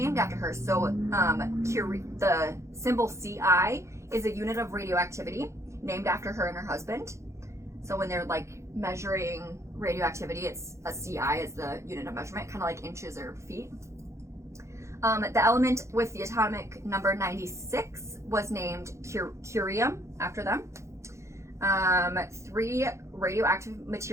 after her. So Curie, the symbol CI is a unit of radioactivity named after her and her husband. So when they're like measuring radioactivity. It's a CI is the unit of measurement, kind of like inches or feet. The element with the atomic number 96 was named curium after them. 3 radioactive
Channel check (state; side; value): late; left; 0.14 ms